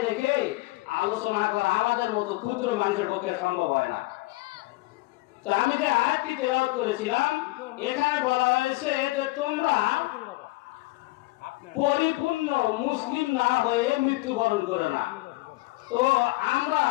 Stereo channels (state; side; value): quieter; right; 21.6 dB